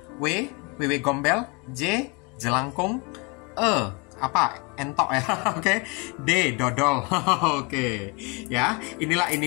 W, WW gombel, J, jelangkung, E, apa? Entok ya, oke. D, dodol, oke. Ya, inilah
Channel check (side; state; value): right; quieter; 30.2 dB